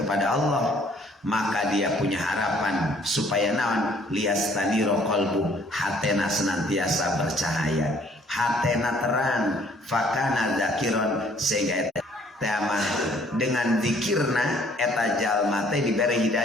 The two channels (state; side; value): normal; both; correlation 0.60